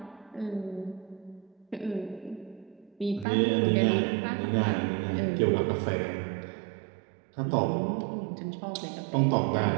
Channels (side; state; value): left; drops out; at 3.2 s